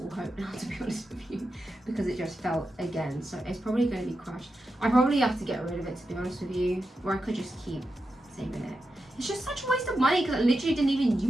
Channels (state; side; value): normal; both; correlation 0.89